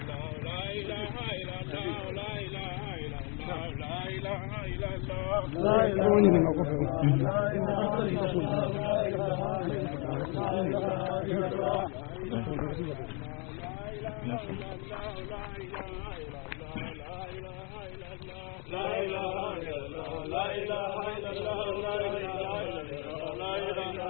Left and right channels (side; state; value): right; quieter; 33.7 dB